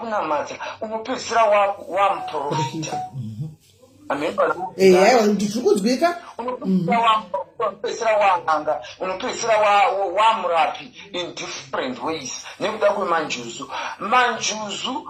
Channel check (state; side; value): identical; both; correlation 1.00